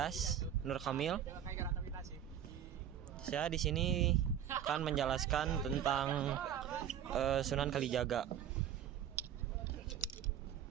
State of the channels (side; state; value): left; quieter; 9.8 dB